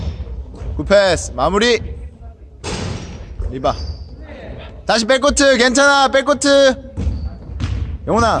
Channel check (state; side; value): identical; both; correlation 1.00